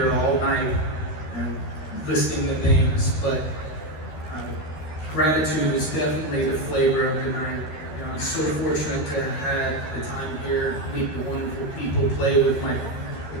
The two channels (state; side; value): late; right; 13 ms